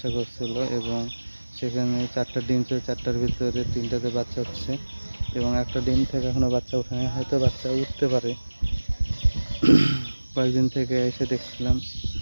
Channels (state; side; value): inverted; both; correlation -1.00